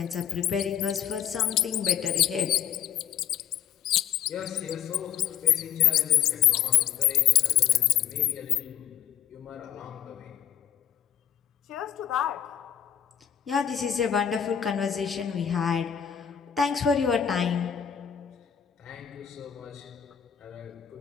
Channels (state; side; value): quieter; right; 9.7 dB